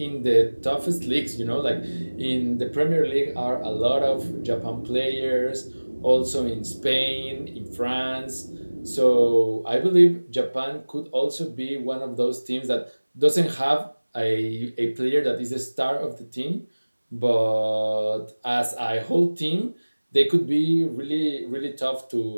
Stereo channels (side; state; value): both; inverted; correlation -1.00